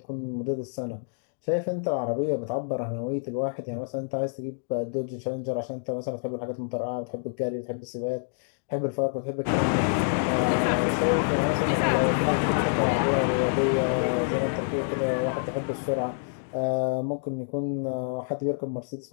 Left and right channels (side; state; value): right; silent; digital silence